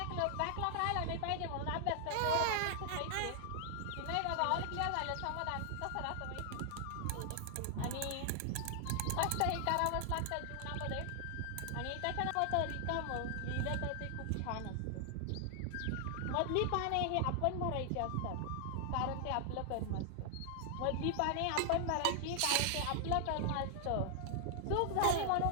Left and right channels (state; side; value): different; both; correlation 0.00